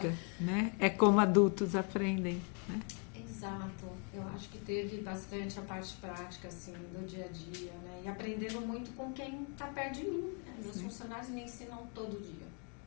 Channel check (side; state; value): right; quieter; 38.0 dB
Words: né? É como adultos aprendem, né? Exato. Eu acho que teve bastante a parte prática, assim, do dia a dia, né? E aprendendo muito com quem está perto de mim, né? Meus funcionários me ensinam todo dia.